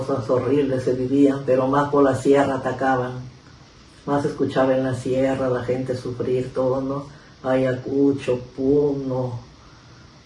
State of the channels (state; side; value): identical; both; correlation 1.00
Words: horribles se vivían, pero más por la sierra atacaban, más escuchaba en la sierra la gente sufrir todo, ¿no? Ayacucho, Puno,